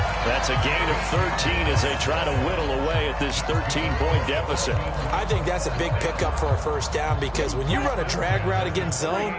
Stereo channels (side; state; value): both; identical; correlation 1.00